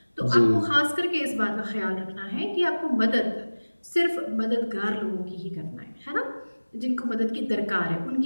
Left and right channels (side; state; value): both; inverted; correlation -1.00